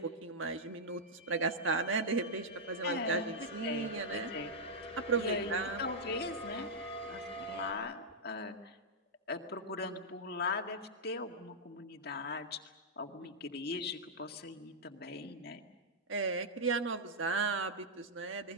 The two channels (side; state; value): both; normal; correlation -0.07